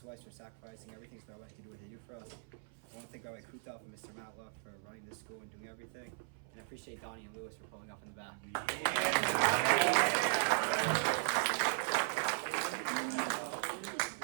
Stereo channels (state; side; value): silent; left; 53 dB below the other